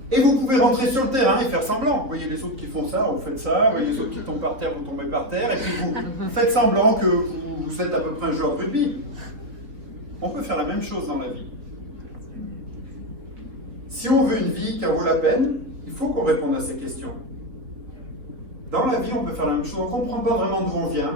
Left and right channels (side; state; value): left; late; 3.5 ms